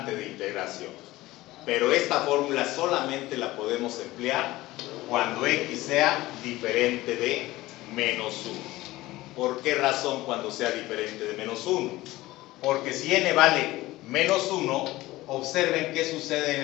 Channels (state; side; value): quieter; right; 18.1 dB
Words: de integración. Pero esta fórmula solamente la podemos emplear cuando x sea diferente de menos 1. ¿Por qué razón cuando sea diferente de menos 1? Porque si n vale menos 1, observen qué sucede en